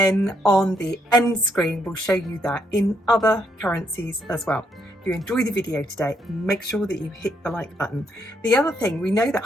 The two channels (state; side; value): normal; both; correlation 0.74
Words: on the end screen, we'll show you that in other currencies as well. If you enjoy the video today, make sure that you hit the like button. The other thing, we know that